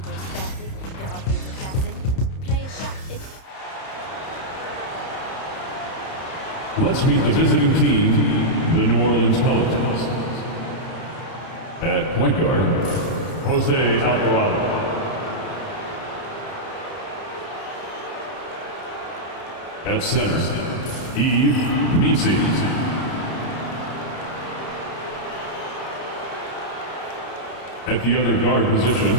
spastic. If I play the classic, play a shot. Let's meet the visiting team, the New Orleans Pelicans. At point guard, Jose Alvarado. At center, Yves Missi. At the other guard position,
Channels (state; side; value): late; right; 31 ms